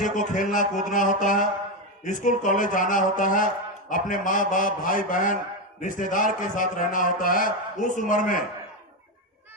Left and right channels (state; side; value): normal; both; correlation 0.10